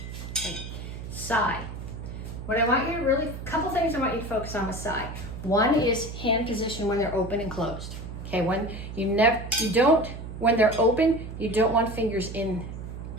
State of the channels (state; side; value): noise; right; hum, 9 dB below the sound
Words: Okay. Side. What I want you to really, a couple things I want you to focus on with side. One is hand position when they're open and closed. Okay, when when they're open, you don't want fingers